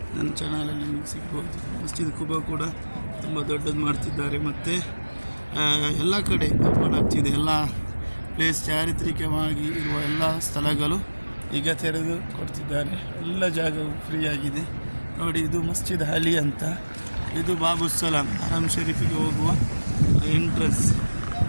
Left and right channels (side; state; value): both; inverted; correlation -1.00